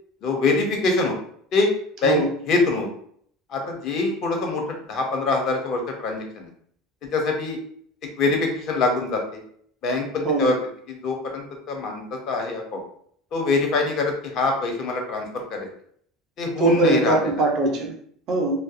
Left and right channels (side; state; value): both; normal; correlation 0.32